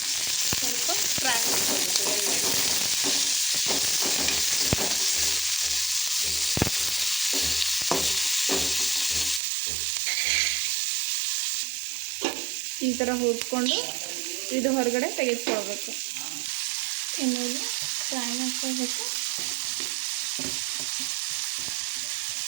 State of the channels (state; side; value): drops out; left; at 9.4 s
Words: ಸ್ವಲ್ಪ ಫ್ರೈ ಮಾಡ್ಕೊಳ್ಬೇಕು ಎಣ್ಣೆಯಲ್ಲಿ. ಈ ಥರ ಹುರ್ಕೊಂಡು ಇದು ಹೊರಗಡೆ ತೆಗೆದುಕೊಳ್ಬೇಕು. ಎಣ್ಣೆಯಲ್ಲಿ ಫ್ರೈ ಮಾಡ್ಕೊಳ್ಬೇಕು.